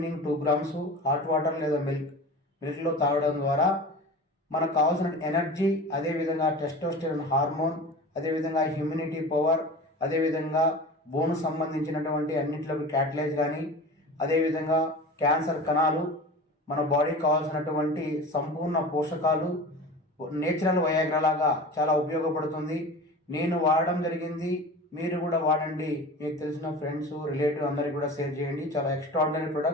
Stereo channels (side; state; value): both; normal; correlation 0.34